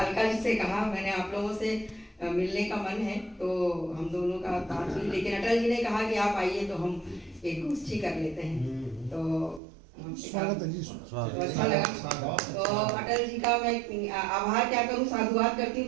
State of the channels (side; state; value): left; drops out; at 9.6 s